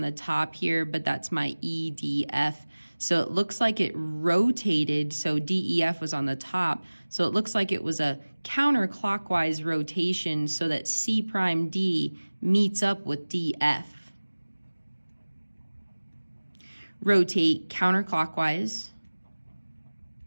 top here, but that's my EDF. So it looks like it rotated, so DEF was on the top. So it looks like it was a counterclockwise rotation so that C prime D meets up with DF. Rotate counterclockwise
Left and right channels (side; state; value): both; inverted; correlation -1.00